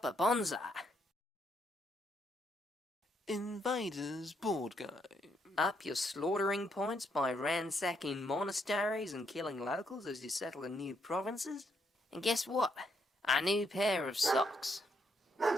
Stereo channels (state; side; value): normal; both; correlation 0.75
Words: bonsai. Invaders board game. Up your slaughtering points by ransacking monasteries and killing locals as you settle in new provinces. And guess what? A new pair of socks.